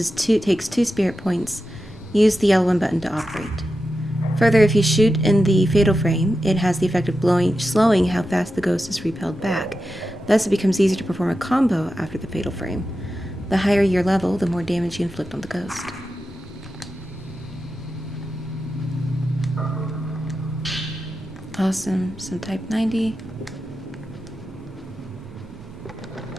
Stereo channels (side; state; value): both; normal; correlation 0.90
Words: 2 spirit points. Use the L1 button to operate. Further, if you shoot in the fatal frame, it has the effect of slowing how fast the ghost is repelled back. Thus, it becomes easier to perform a combo after the fatal frame. The higher your level, the more damage you inflict on the ghost. Awesome. Some type 90.